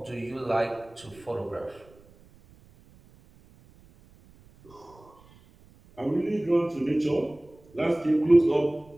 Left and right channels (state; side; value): noise; right; rumble, 27 dB below the sound